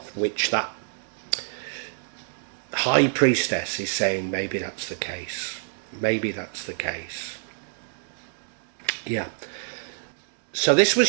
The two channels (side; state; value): left; silent; digital silence